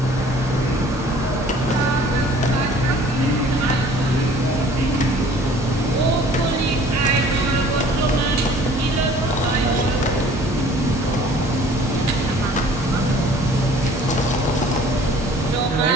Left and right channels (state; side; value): normal; both; correlation 0.51